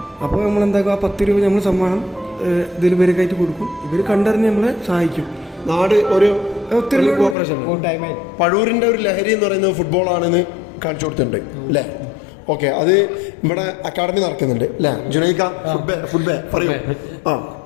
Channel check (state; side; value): drops out; right; at 7.4 s